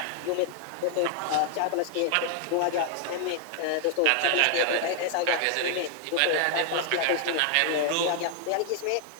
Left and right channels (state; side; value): different; both; correlation 0.00